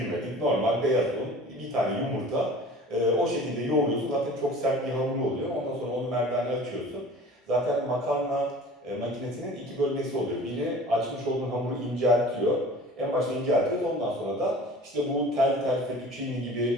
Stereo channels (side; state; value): both; normal; correlation 0.43